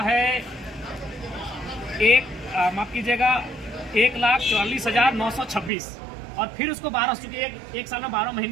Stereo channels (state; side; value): drops out; left; at 5.7 s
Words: है माफ कीजिएगा 1,44,926। और फिर उसको 12, चूंकि एक साल में 12